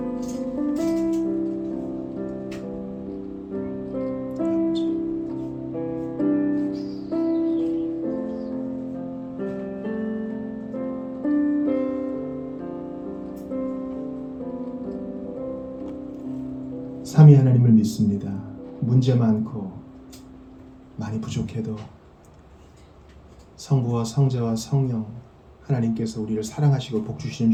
삼위 하나님을 믿습니다. 문제 많고 많이 부족해도 성부와 성자와 성령 하나님께서 우리를 사랑하시고 복주시는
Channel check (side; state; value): both; identical; correlation 1.00